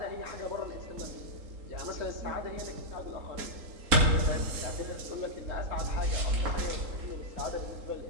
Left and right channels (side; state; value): left; late; 3.8 ms